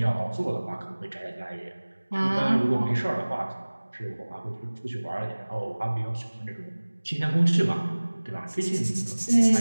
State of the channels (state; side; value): inverted; both; correlation -1.00